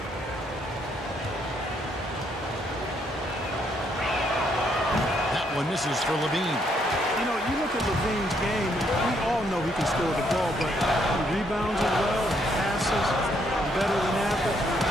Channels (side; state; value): both; normal; correlation 0.72